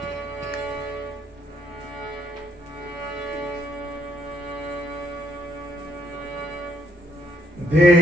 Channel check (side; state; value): both; normal; correlation 0.72